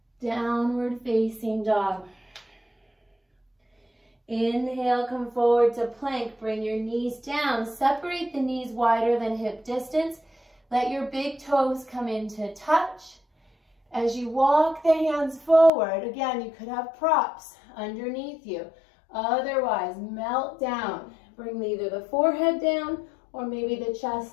Downward facing dog. Inhale, come forward to plank. Bring your knees down. Separate the knees wider than hip distance. Let your big toes come into touch. As you walk the hands forward, again, you could have props underneath you. Otherwise, melt down. Bring either the forehead down or maybe the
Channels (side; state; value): right; drops out; at 15.7 s